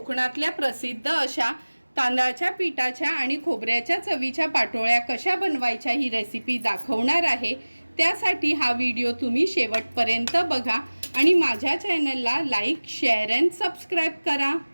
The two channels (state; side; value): inverted; both; correlation -1.00